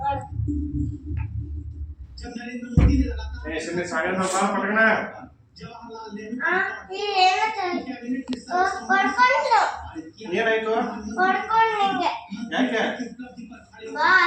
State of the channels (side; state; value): both; identical; correlation 1.00